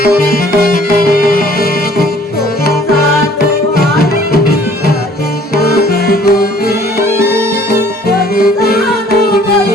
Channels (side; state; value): both; normal; correlation 0.56